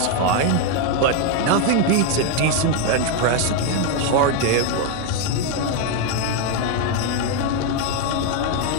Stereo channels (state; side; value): different; both; correlation 0.01